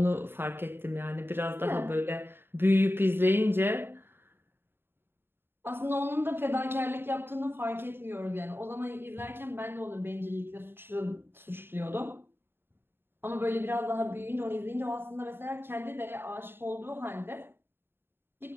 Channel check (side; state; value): left; late; 0.11 ms